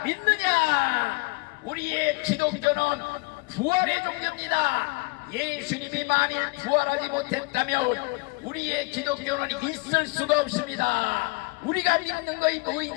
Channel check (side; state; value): right; quieter; 27.3 dB